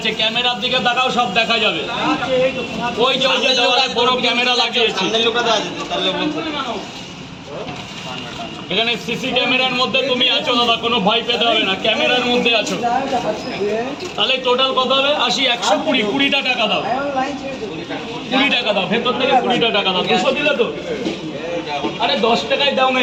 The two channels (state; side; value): identical; both; correlation 1.00